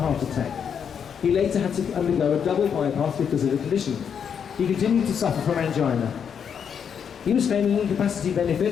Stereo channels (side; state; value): right; quieter; 7.5 dB